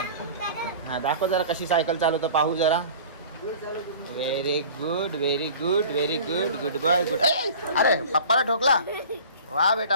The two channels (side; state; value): both; inverted; correlation -0.42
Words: हां, दाखव जरा कशी सायकल चालवतो, पाहू जरा. Very good, very good, very good, good boy, good. अरे पप्पाला ठोकला. वा